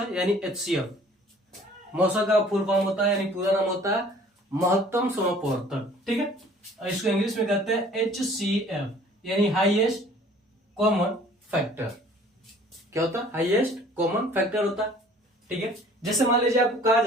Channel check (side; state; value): both; normal; correlation 0.53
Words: यानी HCF। मौसा का फुल फॉर्म होता है यानी पूरा नाम होता है महत्तम समप्रवर्तक। ठीक है, और इसको इंग्लिश में कहते हैं HCF यानी हाईएस्ट कॉमन फैक्टर। क्या होता है? हाईएस्ट कॉमन फैक्टर होता है। ठीक है, जैसे मान लीजिए आपको कहा